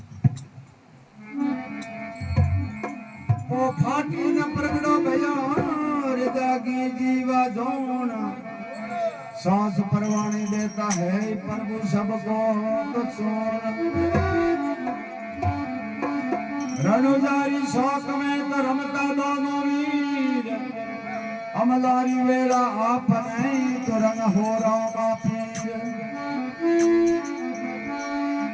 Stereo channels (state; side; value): identical; both; correlation 1.00